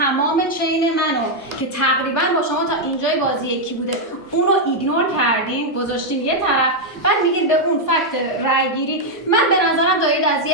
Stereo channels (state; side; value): normal; both; correlation -0.01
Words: چین منو که تقریبا با شما تا اینجای بازی یکی بوده اونو ایگنور کردین، گذاشتین یه طرف. بعد میگین به اون فکت رای گیری. من به نظرم دارید از